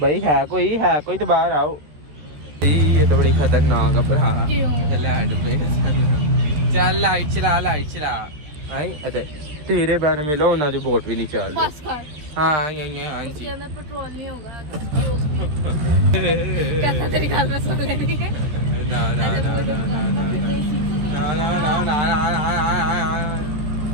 है कोई तो बाहर आओ। ये तो बड़ी खतरनाक है भरा। चल लाइट चला भाई अरे तेरे बैन मिलो ना जो बोट भी नहीं चल रही। हाँ जी पेट्रोल नहीं होगा। कहता तेरी गाल में सुन लेनी है। ना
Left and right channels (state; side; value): late; left; 14 ms